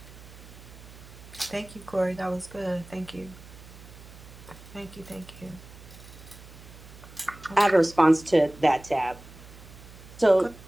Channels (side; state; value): right; noise; hum, 18 dB below the sound